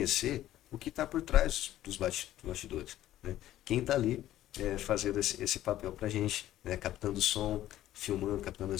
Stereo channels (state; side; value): quieter; right; 13.4 dB